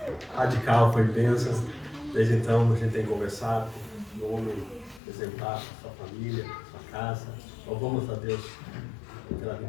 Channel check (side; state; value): right; drops out; at 5.0 s